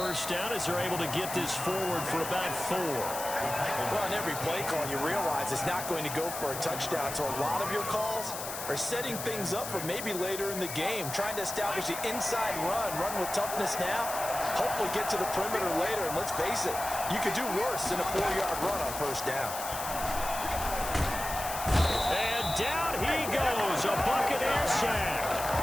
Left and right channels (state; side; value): noise; left; hiss, 7 dB below the sound